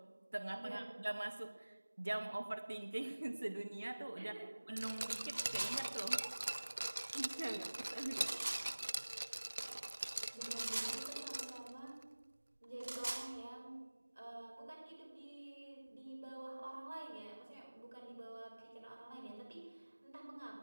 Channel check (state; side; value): inverted; both; correlation -1.00